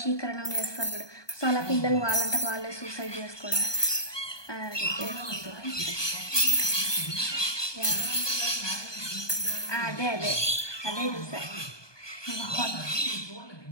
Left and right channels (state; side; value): late; right; 1.2 ms